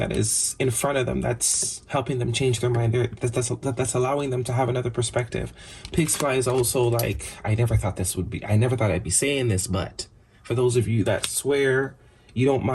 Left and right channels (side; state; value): both; identical; correlation 1.00